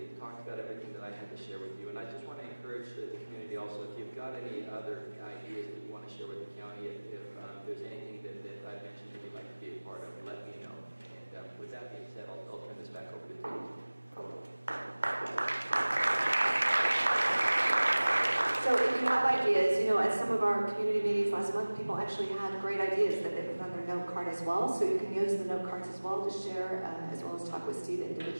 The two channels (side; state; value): both; inverted; correlation -1.00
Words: talked about everything that I had to share with you. And I just want to encourage the community also, if you've got any other ideas that you want to share with the county, if there's anything that I've mentioned that you'd like to be a part of, let me know. And with that being said, I'll turn this back over to Tim. So if you have ideas, at some of our community meetings last month, people actually had great ideas that they put on their note card as well. So you can use the note cards as well to share, as well as talk with Steve